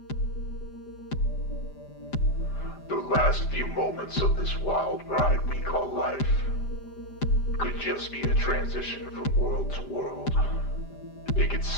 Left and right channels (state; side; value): late; right; 5.0 ms